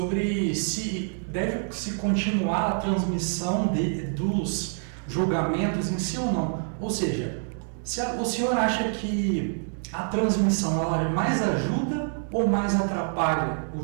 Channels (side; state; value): left; silent; 57 dB below the other